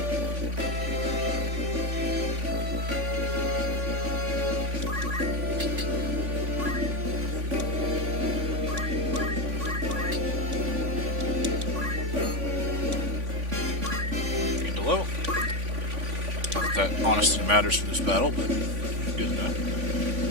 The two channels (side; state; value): left; late; 3.5 ms